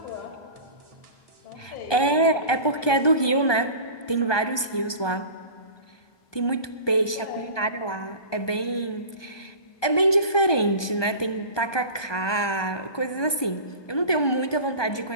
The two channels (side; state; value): right; late; 1.2 ms